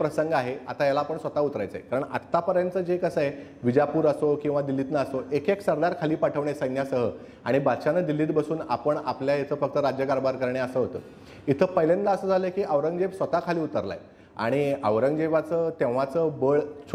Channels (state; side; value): identical; both; correlation 1.00